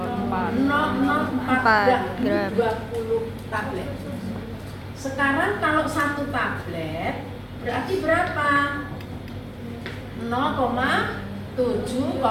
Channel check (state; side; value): identical; both; correlation 1.00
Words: gram. 20 tablet. Sekarang kalau satu tablet berarti berapa?